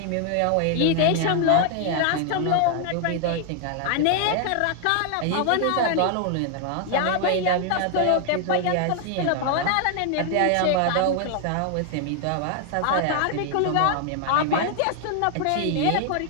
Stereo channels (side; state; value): both; different; correlation 0.00